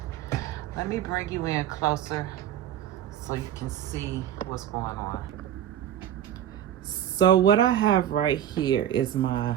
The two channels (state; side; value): quieter; left; 10.7 dB